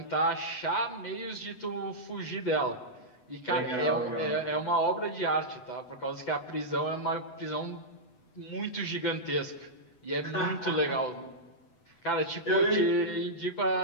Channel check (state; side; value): late; right; 8.0 ms